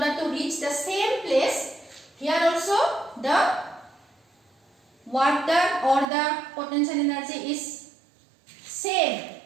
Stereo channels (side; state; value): left; drops out; at 6.1 s